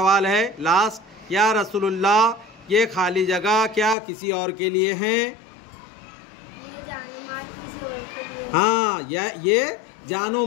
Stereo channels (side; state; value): right; drops out; at 4.0 s